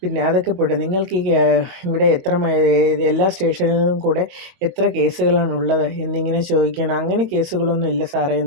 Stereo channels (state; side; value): late; left; 22 ms